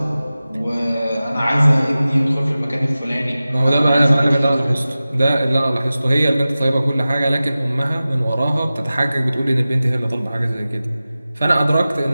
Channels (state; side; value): inverted; both; correlation -0.96